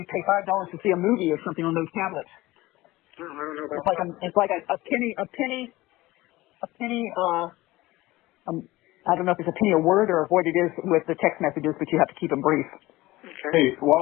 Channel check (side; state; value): right; quieter; 18.7 dB